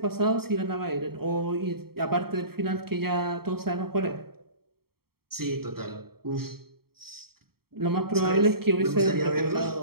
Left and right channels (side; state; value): left; late; 0.94 ms